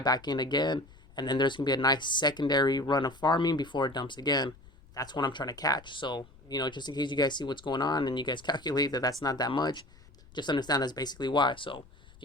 in again. And then there's going to be a nice secondary run of farming before it dumps again. That's what I'm trying to catch. So, you know, just in case you guys see what's going on and you guys calculate that that's not that much, just understand that's basically why. So, if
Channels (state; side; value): noise; left; rumble, 24 dB below the sound